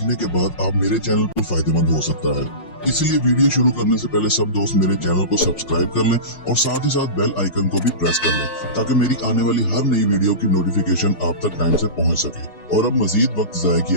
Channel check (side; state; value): right; late; 5.6 ms